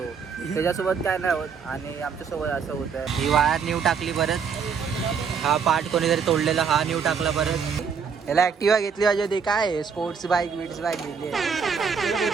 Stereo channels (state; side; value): quieter; left; 6.3 dB